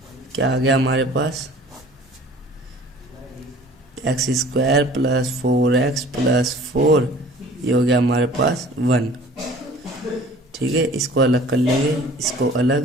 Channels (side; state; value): both; normal; correlation 0.48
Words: क्या आ गया हमारे पास, x² प्लस 4x प्लस 4 ये हो गया हमारे पास 1। ठीक है, इसको अलग कर लेंगे, इसको